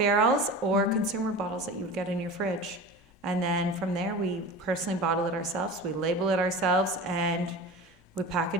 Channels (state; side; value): normal; both; correlation 0.33